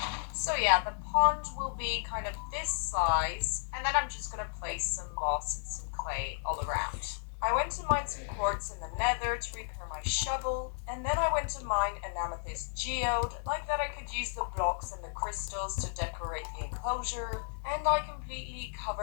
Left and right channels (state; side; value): silent; right; digital silence